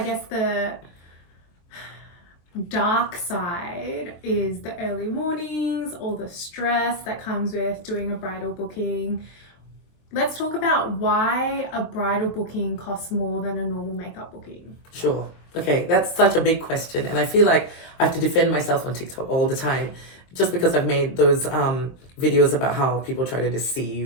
guess the dark side is the early mornings, all the stress that comes with doing a bridal booking. Let's talk about why a bridal booking costs more than a normal makeup booking. Sure. Okay, that's such a big question, and I feel like I have to defend myself on TikTok all the time, just because I've made those videos about how people try to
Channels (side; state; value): right; late; 23 ms